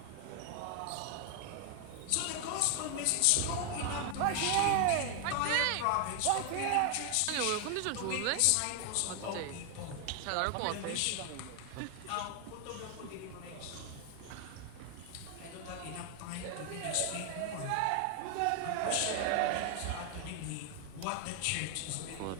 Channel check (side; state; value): both; different; correlation 0.00